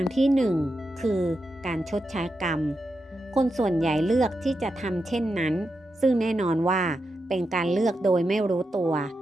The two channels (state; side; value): normal; both; correlation 0.87